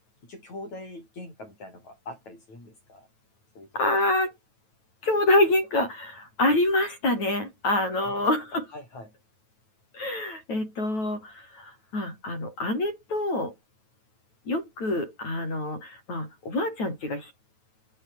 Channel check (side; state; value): right; late; 9.2 ms